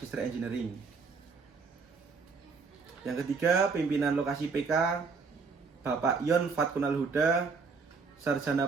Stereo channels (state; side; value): quieter; left; 4.9 dB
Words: Engineering. Yang ketiga, pimpinan lokasi PK Bapak Yon Fatkunal Huda,